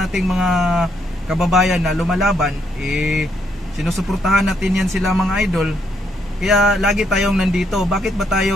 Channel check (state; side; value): normal; both; correlation 0.74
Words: ating mga kababayan na lumalaban, sinusuportahan natin yan sila mga idol. Kaya lagi tayong nandito. Bakit ba tayo